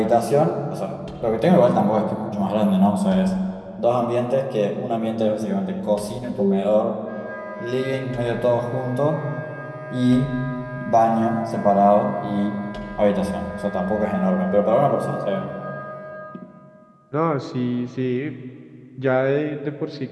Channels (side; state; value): both; identical; correlation 1.00